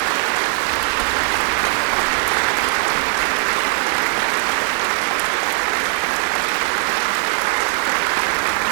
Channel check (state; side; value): silent; left; digital silence